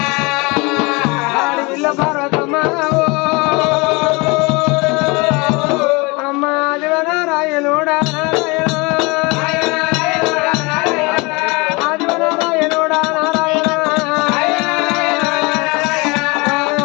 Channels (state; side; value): quieter; right; 26.7 dB